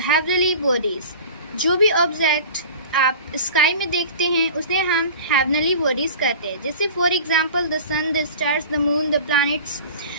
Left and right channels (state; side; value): inverted; both; correlation -0.40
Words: heavenly bodies. जो भी ऑब्जेक्ट आप स्काई में देखते हैं उसे हम heavenly bodies कहते हैं। जैसे for example the sun, the stars, the moon, the planets